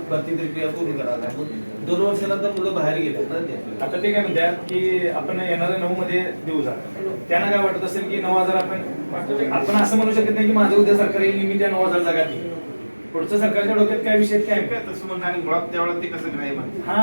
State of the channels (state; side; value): inverted; both; correlation -1.00